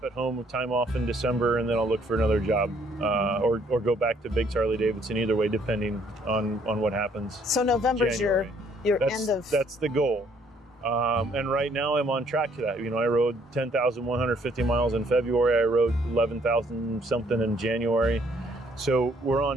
at home with time off in December, and then I'll look for another job, or go back to Biggs Harley Davidson, either way, depending on what happens. So November's January. your end of... That's the goal. And right now I'm on track to that. I rode 10,150 miles in February. I rode 11,000 something in January. So we're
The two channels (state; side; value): normal; both; correlation 0.65